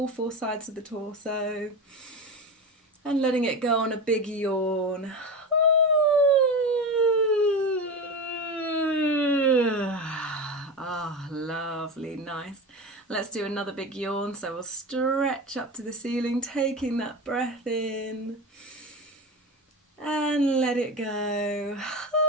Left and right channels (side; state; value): both; normal; correlation 0.24